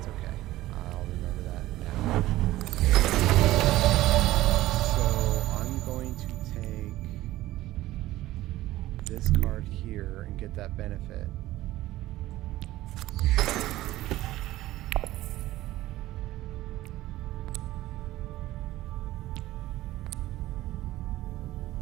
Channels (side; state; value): left; quieter; 16.2 dB